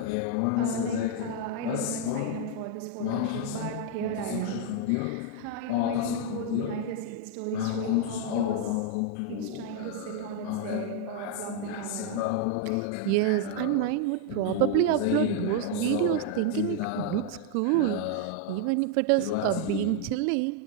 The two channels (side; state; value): both; different; correlation 0.00